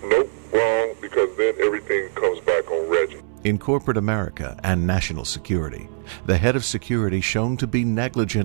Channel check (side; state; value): left; silent; 64 dB below the other